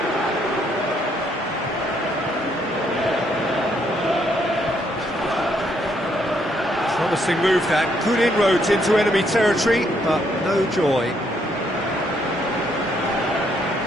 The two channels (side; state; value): both; normal; correlation 0.72